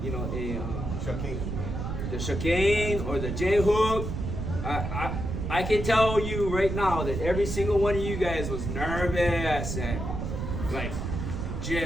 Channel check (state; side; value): noise; right; rumble, 4 dB below the sound